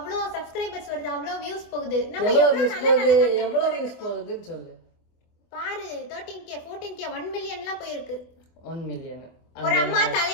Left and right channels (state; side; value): late; right; 24 ms